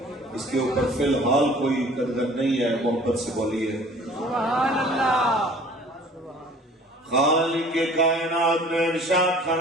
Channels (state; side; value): normal; both; correlation 0.50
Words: اس کے اوپر فی الحال کوئی قدر نہیں ہے، محبت سے بولیے سبحان اللہ۔ خالق کائنات نے ارشاد